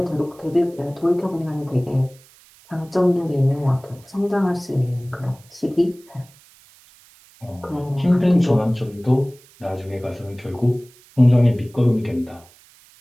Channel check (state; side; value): noise; right; hiss, 27 dB below the sound